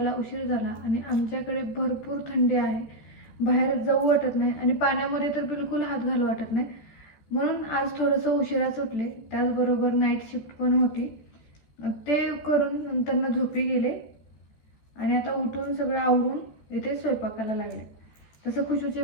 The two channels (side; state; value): right; late; 14 ms